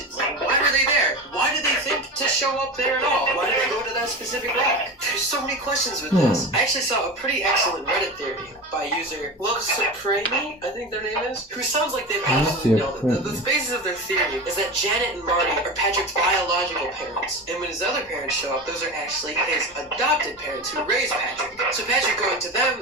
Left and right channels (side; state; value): both; normal; correlation 0.26